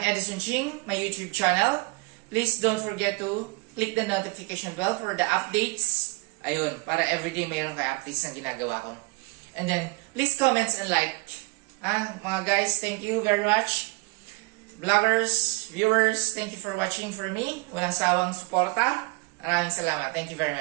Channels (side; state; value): left; quieter; 28.4 dB